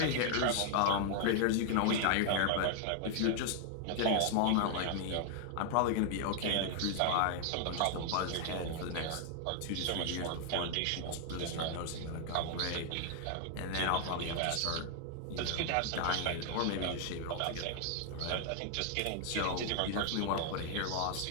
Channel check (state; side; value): different; both; correlation 0.00